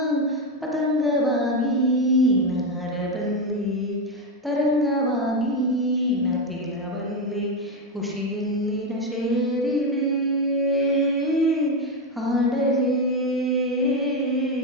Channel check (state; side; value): normal; both; correlation 0.10